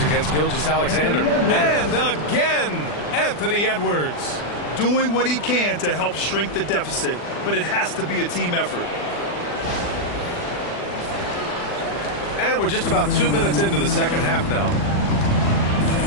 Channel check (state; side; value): late; right; 40 ms